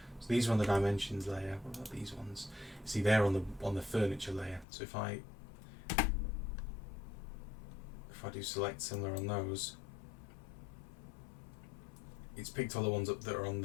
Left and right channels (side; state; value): right; drops out; at 4.7 s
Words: So these are on the dimensions layer. What about these ones? See, they're on the furniture layer. So if I do select similar on those, it's picked all the ones up that are on